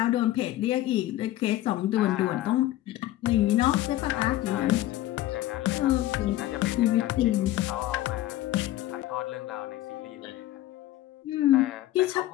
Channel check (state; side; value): quieter; right; 14.8 dB